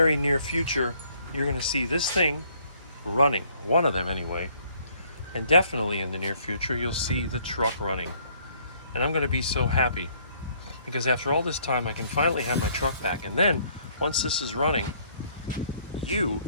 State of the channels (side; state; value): both; inverted; correlation -0.64